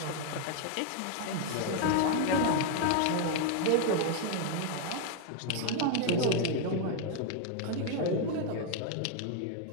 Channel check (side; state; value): both; different; correlation 0.00